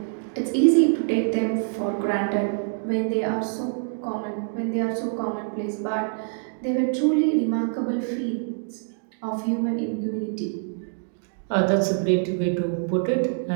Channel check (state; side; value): silent; left; digital silence